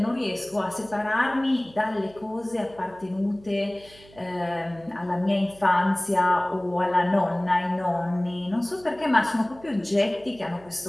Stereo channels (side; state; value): right; noise; hum, 24 dB below the sound